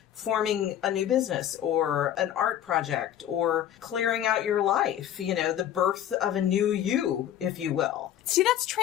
forming a new business or an art project or clearing out your life, the birth of a new you, if you will. See, that's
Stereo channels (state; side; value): quieter; right; 11.0 dB